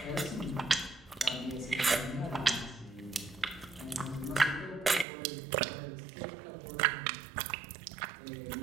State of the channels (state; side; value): drops out; left; at 5.1 s